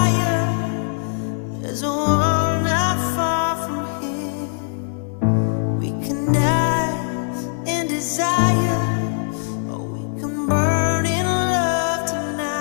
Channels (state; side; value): silent; right; 56 dB below the other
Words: There's a world not far from here. We can die in desire, or we can burn in love